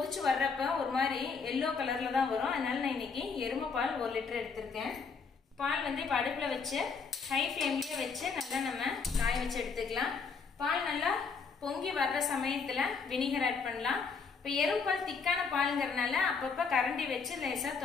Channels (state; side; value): quieter; right; 5.3 dB